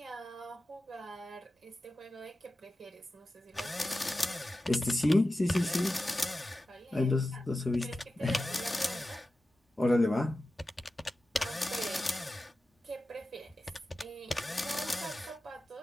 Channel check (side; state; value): both; normal; correlation 0.94